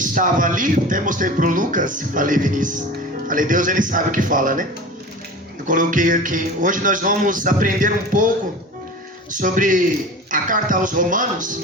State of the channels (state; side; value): normal; both; correlation 0.35